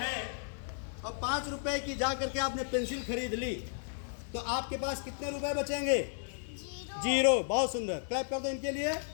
है और 5 रुपए की जा करके आपने पेंसिल खरीद ली तो आपके पास कितने रुपए बचेंगे? 0। बहुत सुंदर, क्लैप कर दो इनके लिए।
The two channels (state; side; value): silent; right; 55 dB below the other